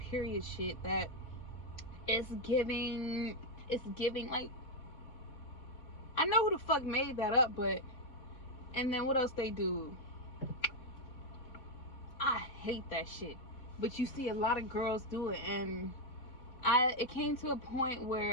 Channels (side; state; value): right; late; 3.9 ms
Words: shit. That it's giving like, I know who the fuck made that up, but and then what else they do? I hate that shit. But you see a lot of girls do it, and it came to a point